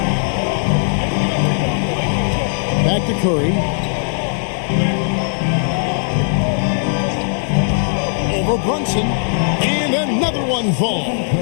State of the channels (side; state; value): right; silent; 65 dB below the other